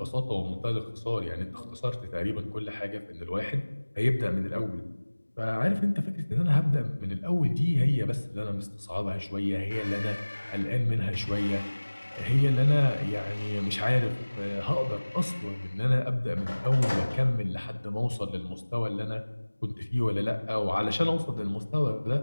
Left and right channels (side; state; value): both; inverted; correlation -1.00